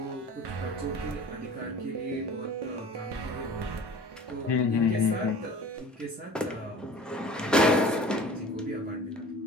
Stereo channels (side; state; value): both; normal; correlation 0.42